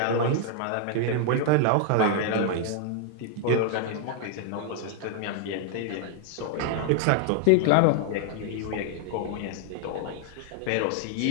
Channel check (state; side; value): different; both; correlation 0.00